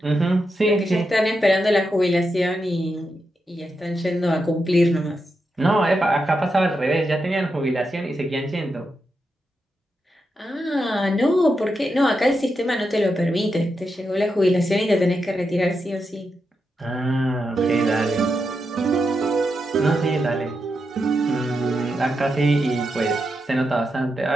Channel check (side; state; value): both; normal; correlation 0.86